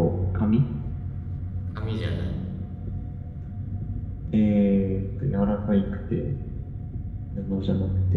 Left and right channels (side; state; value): both; identical; correlation 1.00